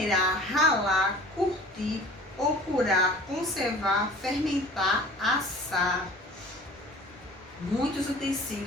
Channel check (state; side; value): normal; both; correlation 0.45